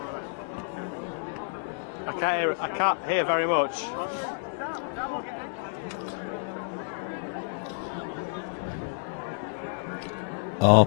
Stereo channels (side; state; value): right; silent; digital silence